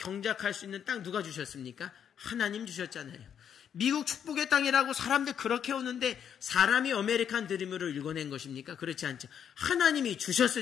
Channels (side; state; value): right; quieter; 8.5 dB